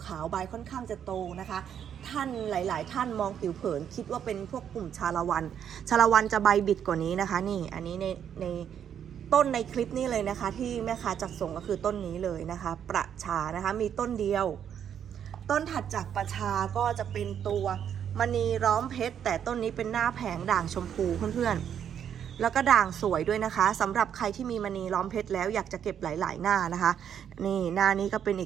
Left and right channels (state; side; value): quieter; left; 8.8 dB